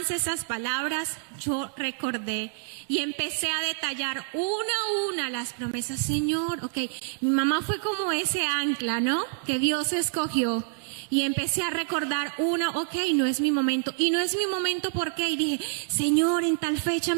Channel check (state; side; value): silent; left; digital silence